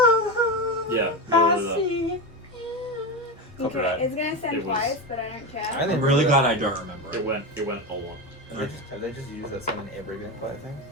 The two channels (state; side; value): normal; both; correlation 0.18